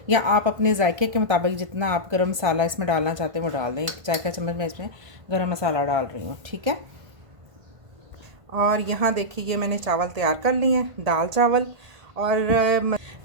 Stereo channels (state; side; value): late; left; 1.5 ms